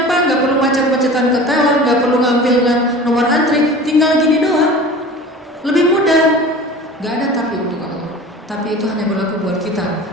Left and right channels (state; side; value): normal; both; correlation 0.39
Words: nggak perlu macet-macetan ke teller, nggak perlu ngambil nomor antri, tinggal gini doang. Lebih mudah. Nggak ada tapi untuk Allah. Tapi itu hanya berlaku buat kita.